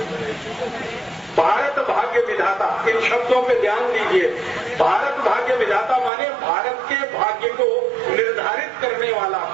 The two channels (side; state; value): left; drops out; at 6.1 s